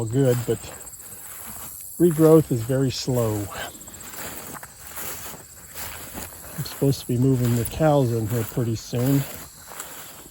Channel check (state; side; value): identical; both; correlation 1.00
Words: good, but regrowth is very slow. I'm supposed to be moving the cows in here pretty soon.